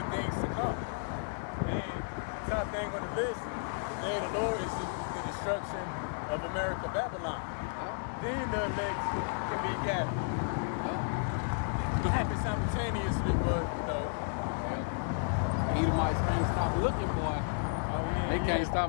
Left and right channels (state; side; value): silent; right; 56 dB below the other